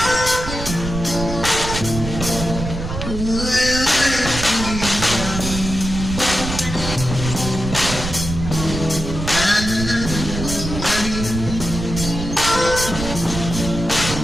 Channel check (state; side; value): noise; right; rumble, 6 dB below the sound